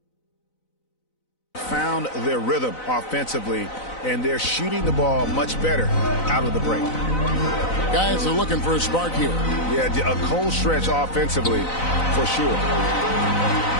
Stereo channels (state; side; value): late; right; 4.0 ms